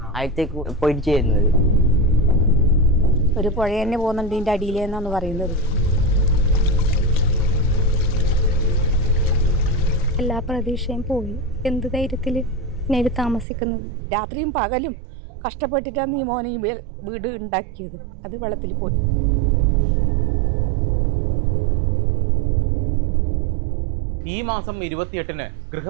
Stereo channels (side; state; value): left; drops out; at 13.5 s